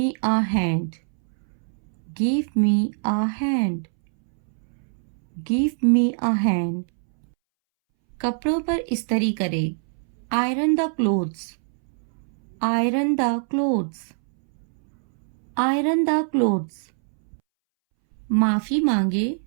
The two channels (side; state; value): left; silent; 63 dB below the other